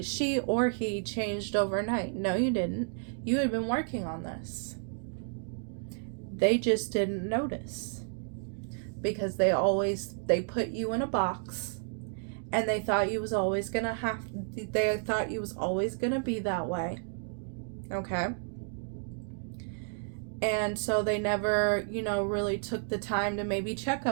or he changed overnight. No, you didn't. You had been working on this. They just didn't notice, because they put you in a box, and they thought you was always gonna be that way. Okay. And so they never, you know, really took the time to maybe check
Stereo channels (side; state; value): left; silent; 57 dB below the other